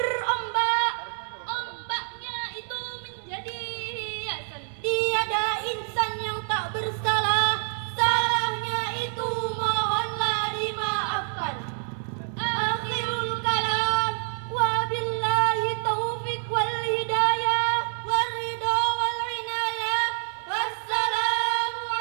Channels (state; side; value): silent; left; 60 dB below the other